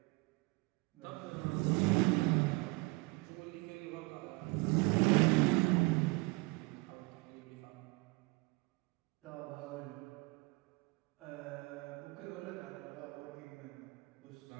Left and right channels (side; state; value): left; quieter; 26.0 dB